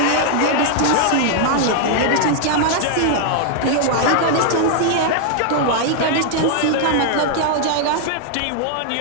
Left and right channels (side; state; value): both; different; correlation 0.00